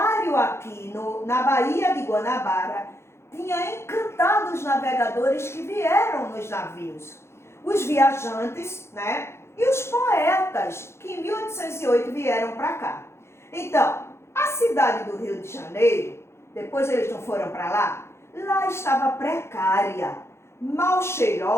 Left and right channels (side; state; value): right; late; 0.13 ms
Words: aqui na Baía de Guanabara tinha encantado os navegadores que vieram nos navios. Os viajantes, né? E os poetas que em 1808 vieram para cá. Então, a cidade do Rio de Janeiro, depois eles não foram para lá, lá estava precária, mal